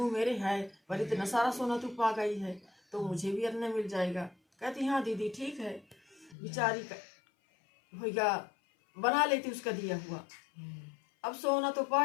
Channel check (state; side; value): drops out; right; at 6.4 s